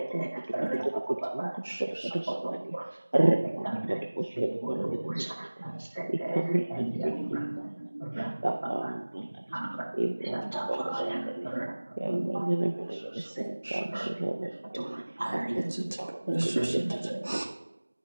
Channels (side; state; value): both; inverted; correlation -1.00